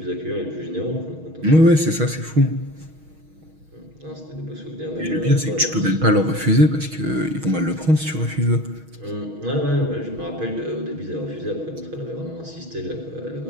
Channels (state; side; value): late; left; 6.3 ms